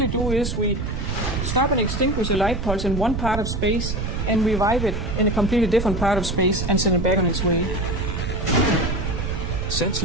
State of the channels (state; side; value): noise; right; rumble, 3 dB below the sound